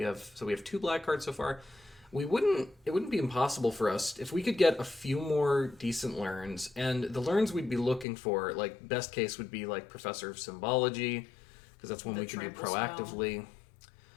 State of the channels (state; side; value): drops out; right; at 8.1 s